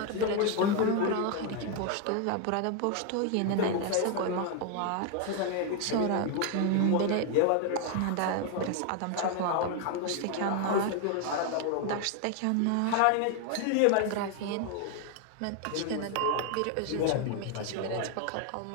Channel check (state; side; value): different; both; correlation 0.01